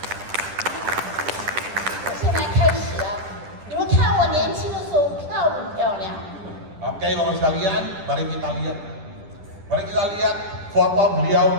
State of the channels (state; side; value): late; left; 10 ms